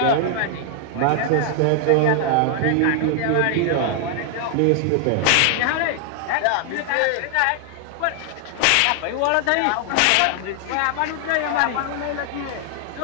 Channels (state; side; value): different; both; correlation 0.00